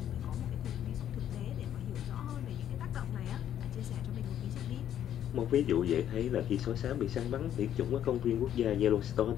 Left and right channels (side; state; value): right; quieter; 10.5 dB